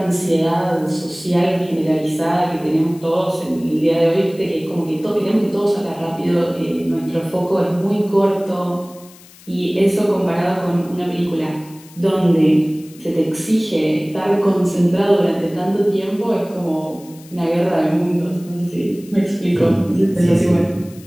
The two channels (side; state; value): left; noise; hiss, 23 dB below the sound